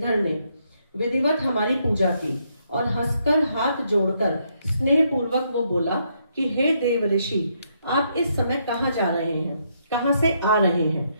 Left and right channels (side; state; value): both; inverted; correlation -0.75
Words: ने विधिवत हमारी पूजा की और हंसकर हाथ जोड़कर स्नेह पूर्वक वो बोला कि हे देव ऋषि, आप इस समय कहाँ जा रहे हैं, कहाँ से आ रहे हैं,